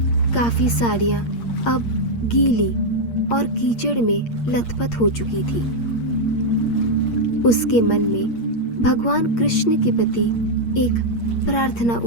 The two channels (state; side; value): late; right; 8.6 ms